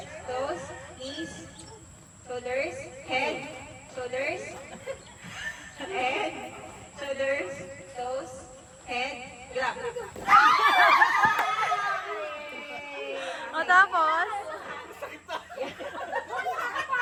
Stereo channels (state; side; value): identical; both; correlation 1.00